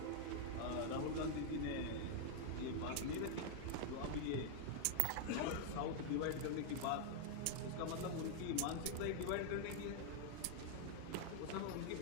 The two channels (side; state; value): both; different; correlation 0.00